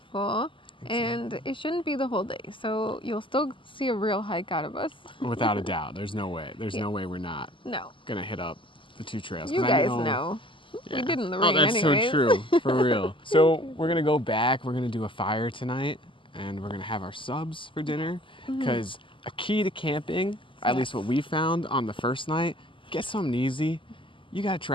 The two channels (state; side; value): late; right; 0.25 ms